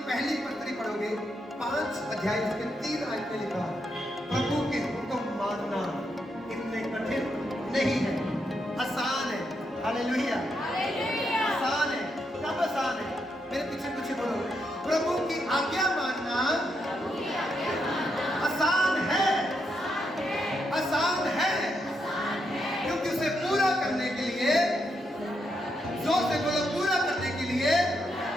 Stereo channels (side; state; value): both; normal; correlation 0.81